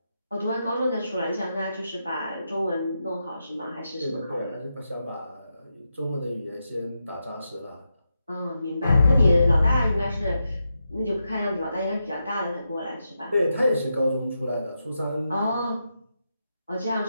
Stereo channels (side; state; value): both; inverted; correlation -0.86